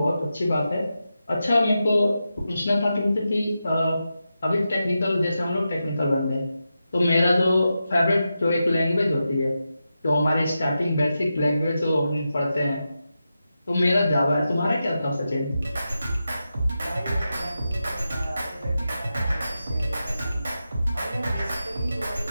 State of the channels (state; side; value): inverted; both; correlation -0.90